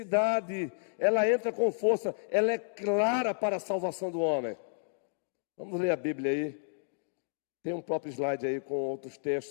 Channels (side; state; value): right; silent; digital silence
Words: ela entra com força, ela é clara para a salvação do homem. Vamos ler a Bíblia aí. Tem um próprio slide aí com outros